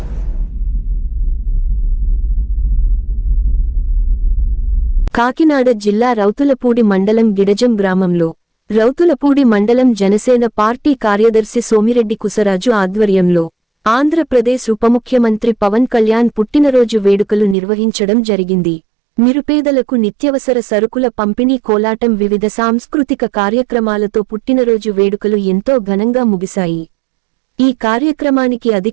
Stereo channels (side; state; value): left; drops out; at 17.6 s